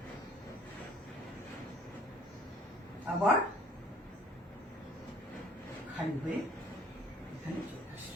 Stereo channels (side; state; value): both; normal; correlation 0.54